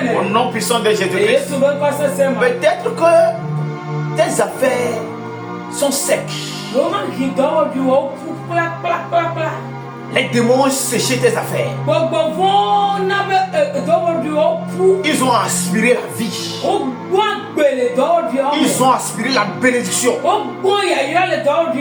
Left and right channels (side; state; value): both; identical; correlation 1.00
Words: Au nom puissant de Jésus-Christ. Peut-être que tes affaires sont secs. Les démons ont séché tes affaires. Ils ont aspiré la vie. Ils ont aspiré la bénédiction.